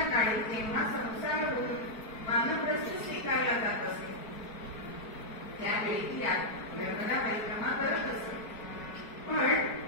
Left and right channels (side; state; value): right; late; 4.6 ms